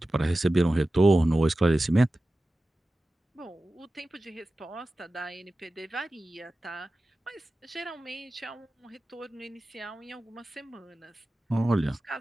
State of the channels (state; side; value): normal; both; correlation 0.95